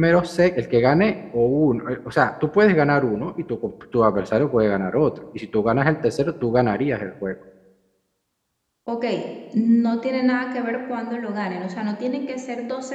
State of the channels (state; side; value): identical; both; correlation 1.00